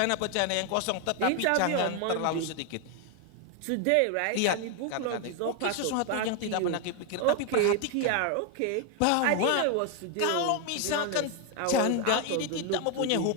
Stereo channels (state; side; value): different; both; correlation 0.01